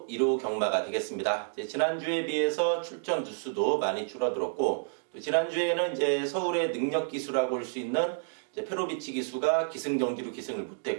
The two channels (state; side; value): silent; left; digital silence